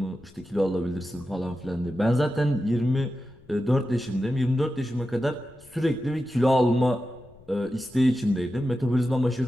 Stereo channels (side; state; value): left; noise; rumble, 26 dB below the sound